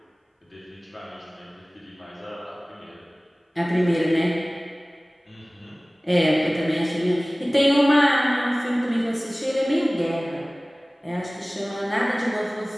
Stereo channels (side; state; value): both; normal; correlation 0.98